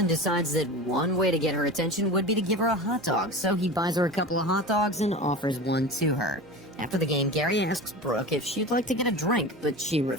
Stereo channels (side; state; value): right; noise; hum, 28 dB below the sound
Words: decides that one way to get her attention would be to give her a hot dog, so he buys her a couple of hot dogs and offers one to her. After the game, Gary asks Brooke if she'd like to get a drink, but she